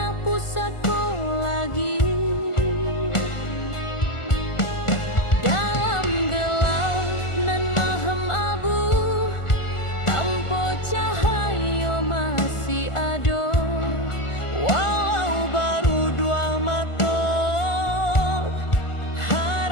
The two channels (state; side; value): late; right; 1.4 ms